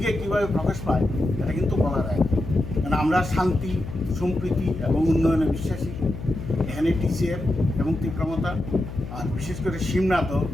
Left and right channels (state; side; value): noise; left; hum, 10 dB below the sound